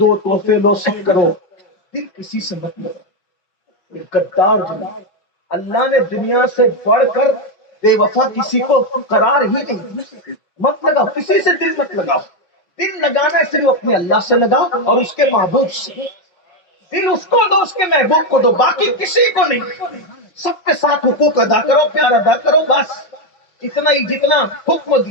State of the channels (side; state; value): right; late; 5.5 ms